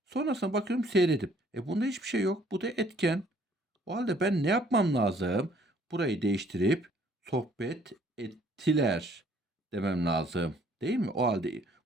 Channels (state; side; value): normal; both; correlation 0.61